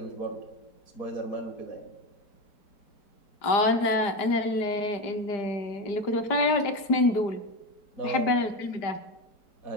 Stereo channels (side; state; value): right; late; 5.0 ms